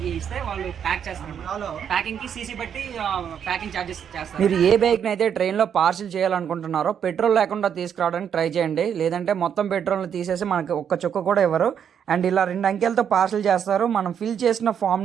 ఇస్తే వాళ్ళు ప్యాక్ చేస్తారు. ప్యాకింగ్ కి సీసీ బట్టి ప్యాకింగ్ చార్జెస్ చేస్తారు. మీరు ఏ బైక్ని అయితే ట్రైన్లో పార్సల్ చేయాలనుకుంటున్నారో పెట్రోల్ లేకుండా తీసుకురావడానికి ట్రై చేయండి. లేదంటే మొత్తం పెట్రోల్ని తీసేసి మనకి ఒక్క చుక్క కూడా ఇవ్వరు. అండ్ ఇలా 2 అంకెలతో పార్సల్ చేస్తారు. మనం ఫిల్ చేసిన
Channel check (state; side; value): quieter; left; 8.2 dB